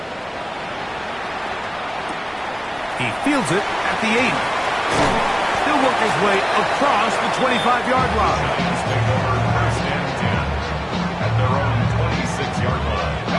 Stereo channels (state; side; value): identical; both; correlation 1.00